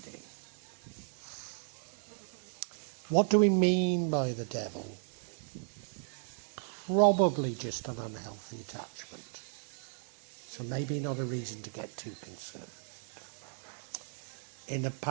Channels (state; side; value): silent; left; 54 dB below the other